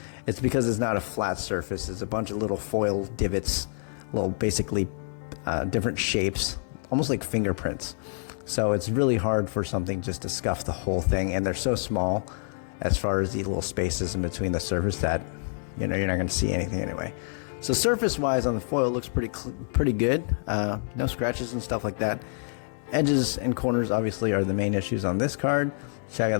it's because it's not a flat surface. It's a bunch of little foil divots, little basically different shapes, almost like fingerprints. So it's really hard for something just to scuff the whole thing, and they're so small as far as the little spaces in between the surface that you're not going to see anything anyway. So surface wise on the foil looks pretty good. No scratches and stuff like that. Edges and corners obviously are the main issues on this card. Check out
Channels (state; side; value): silent; right; digital silence